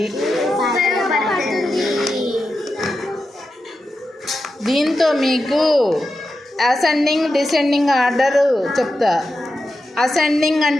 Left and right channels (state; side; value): normal; both; correlation 0.90